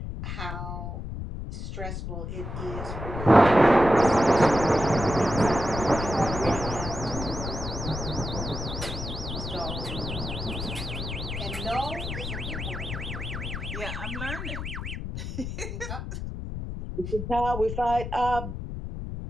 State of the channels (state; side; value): noise; left; rumble, 6 dB below the sound